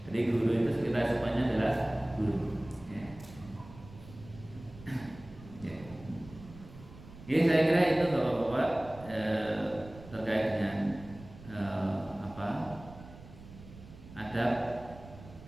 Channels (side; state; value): right; noise; rumble, 18 dB below the sound